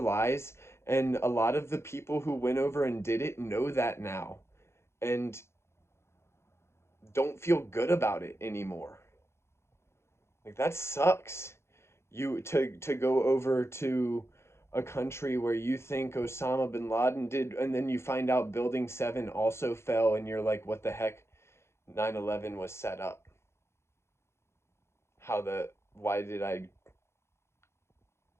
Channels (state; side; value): late; right; 0.13 ms